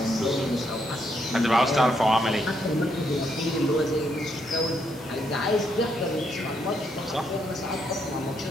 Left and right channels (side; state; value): both; normal; correlation 0.76